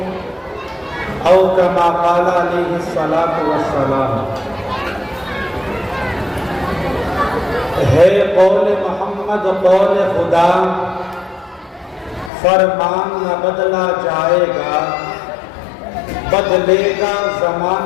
او کما قال علیہ الصلاۃ والسلام۔ ہے قول محمد قول خدا، فرمان نہ بدلا جائے گا، بدلے گا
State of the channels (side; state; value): right; drops out; at 12.3 s